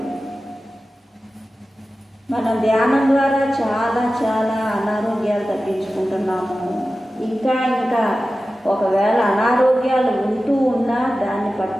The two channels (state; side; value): normal; both; correlation 0.95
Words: మనం ధ్యానం ద్వారా చాలా చాలా అనారోగ్యాలు తగ్గించుకుంటున్నాము. ఇంకా ఇంకా ఒకవేళ అనారోగ్యాలు ఉంటూ ఉన్నా దాన్ని